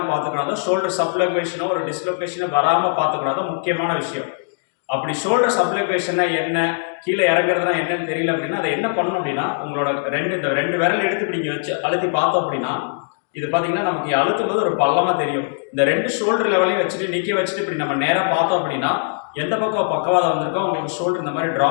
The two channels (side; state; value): right; silent; 65 dB below the other